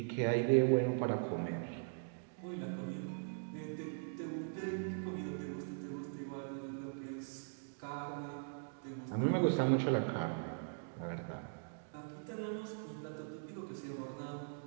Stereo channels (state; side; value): silent; left; digital silence